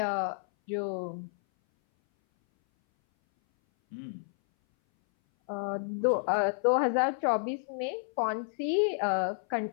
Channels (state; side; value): silent; right; 58 dB below the other